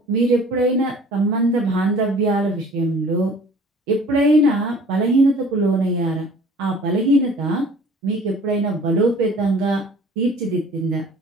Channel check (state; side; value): normal; both; correlation 0.49